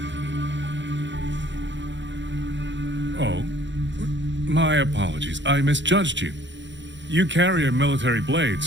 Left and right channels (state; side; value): late; left; 0.53 ms